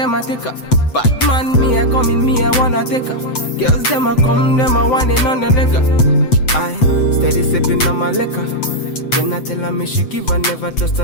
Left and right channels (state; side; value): late; right; 7.9 ms